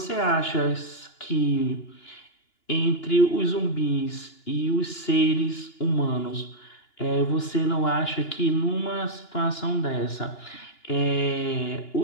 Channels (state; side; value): late; right; 2.9 ms